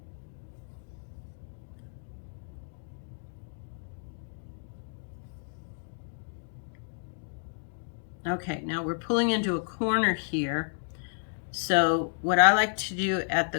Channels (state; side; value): silent; right; digital silence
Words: Okay, now we're pulling into a corner here. So what I like to do at